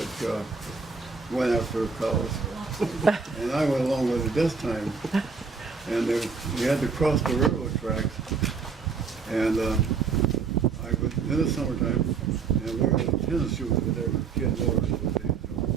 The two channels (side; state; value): left; quieter; 5.2 dB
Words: that went after cows. And I went along with it this time. And we had to cross the railroad tracks. And I was in the summertime, and we were in tennis shoes with their kid Morris.